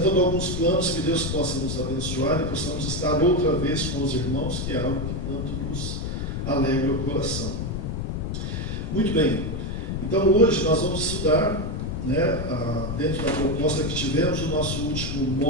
alguns planos que Deus possa nos abençoar e possamos estar outra vez com os irmãos, que é algo que tanto nos alegra o coração. Muito bem, então hoje nós vamos estudar, né, dentro da proposta que tivemos, o nosso último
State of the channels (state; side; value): noise; left; rumble, 3 dB below the sound